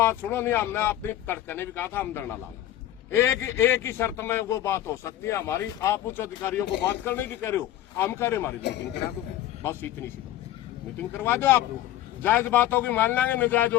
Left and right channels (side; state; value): right; quieter; 13.2 dB